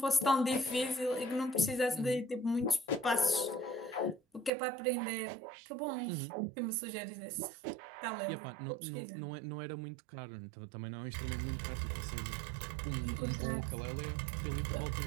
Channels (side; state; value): left; drops out; at 4.5 s